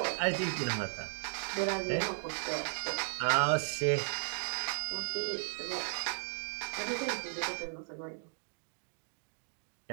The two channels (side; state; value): left; silent; digital silence